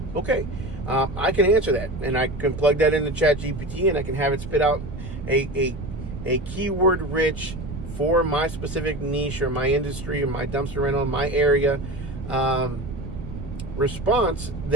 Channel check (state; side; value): noise; right; rumble, 9 dB below the sound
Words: Okay. I can answer that, and I can plug that into ChatGPT, and I can have it spit out a keyword rich for my specific niche or my industry or my dumpster rental, my area, response